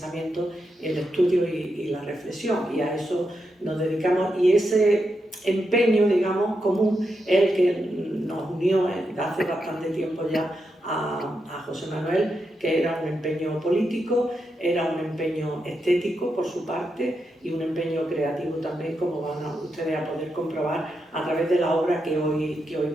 el estudio y la reflexión, y a eso nos dedicamos. Y ese empeño, digamos, común es el que nos unió hace bastante tiempo ya a José Manuel, que era un empeño político, era un empeño estético por su parte y un empeño creativo también, como van ustedes a poder comprobar a través de la obra que hoy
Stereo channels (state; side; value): normal; both; correlation 0.85